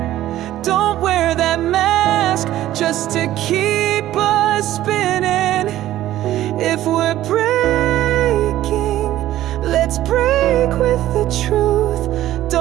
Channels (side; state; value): left; quieter; 13.9 dB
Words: Don't wear that mask just to keep us spinning. If we're breaking, let's break with the truth.